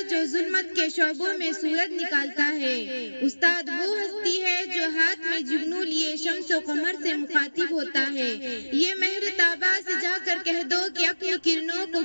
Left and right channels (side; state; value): both; inverted; correlation -1.00